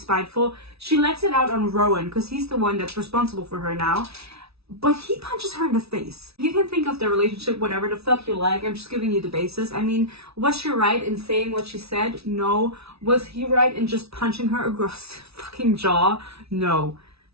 she lets it out on Rowan because he's the one that's responsible for her now. But he punches her in the face. You can think of the relationship whatever the fuck you like. I'm just giving you the basis. I mean, was she right in saying what she said? No. Was he right in just punching her across the fucking jaw? No.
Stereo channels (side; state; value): left; late; 0.78 ms